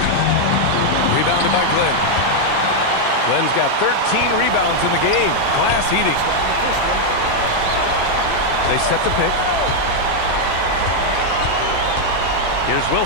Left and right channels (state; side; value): different; both; correlation 0.00